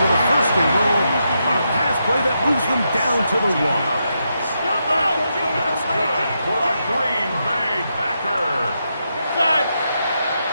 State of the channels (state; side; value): inverted; both; correlation -0.83